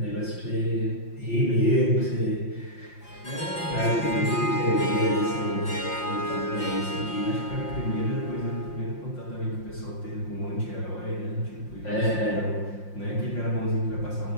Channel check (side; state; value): right; late; 5.7 ms